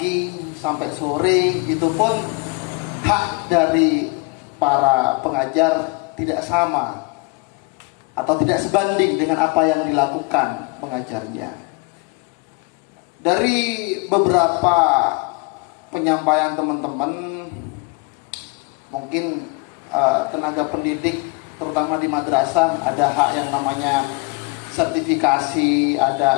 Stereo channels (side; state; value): right; quieter; 28.7 dB